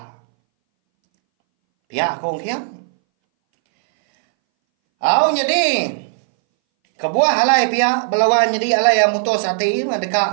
Pihak kong kiam. Jadi Kebuah alai pihak belawan jadi alai yang mutus hati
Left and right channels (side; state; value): left; silent; 63 dB below the other